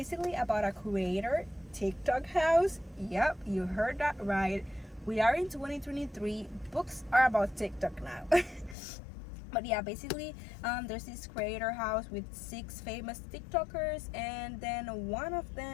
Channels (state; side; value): drops out; right; at 8.8 s